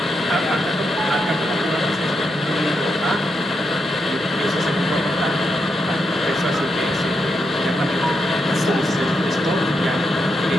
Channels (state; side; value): normal; both; correlation 0.83